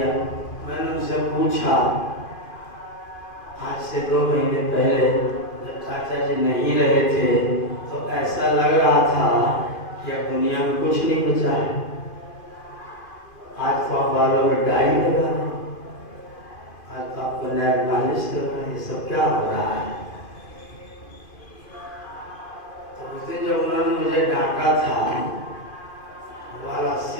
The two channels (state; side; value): late; right; 2.5 ms